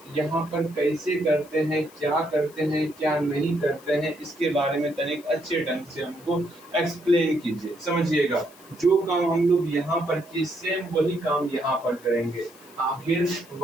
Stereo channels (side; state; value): left; noise; hiss, 24 dB below the sound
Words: यहाँ पर कैसे करते हैं, क्या करते हैं, क्या नहीं करते हैं, इसके बारे में तनिक अच्छे ढंग से हमको एक्सप्लेन कीजिए, समझिएगा। जो काम हम लोग यहाँ पर किए सेम वही काम यहाँ पर करेंगे। आखिर